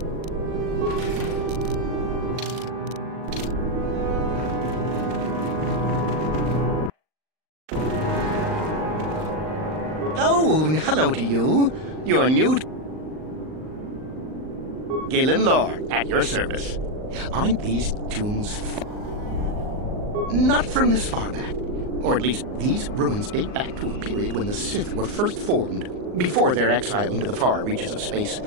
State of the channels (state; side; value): late; left; 39 ms